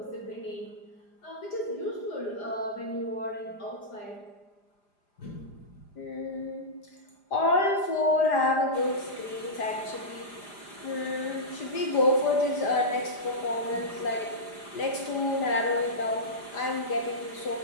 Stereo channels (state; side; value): late; right; 5.0 ms